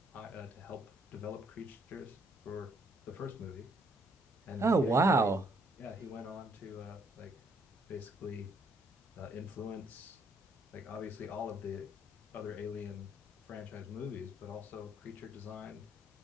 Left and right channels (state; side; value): normal; both; correlation 0.69